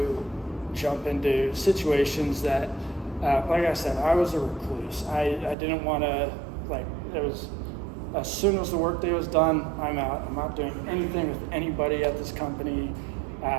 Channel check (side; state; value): left; drops out; at 5.6 s